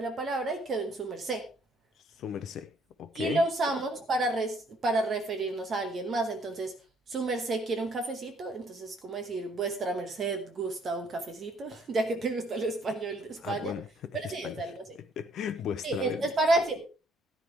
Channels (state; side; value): normal; both; correlation 0.64